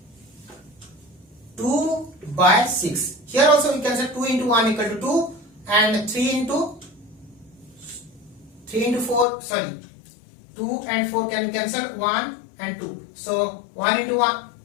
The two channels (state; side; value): drops out; right; at 9.2 s